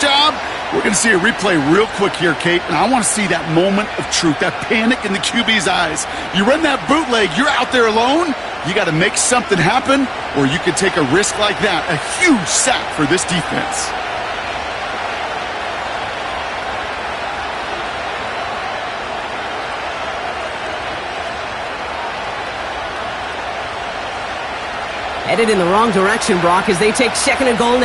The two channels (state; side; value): identical; both; correlation 1.00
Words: we're going to see a replay real quick here, Kate, and I want to see that moment of truth, that panic in the QB's eyes. You run that bootleg, you're out there alone, you got to make something happen, or you could take a risk like that, a huge sack for this defense. Headed in the wrong direction, Brock, as they take second and goal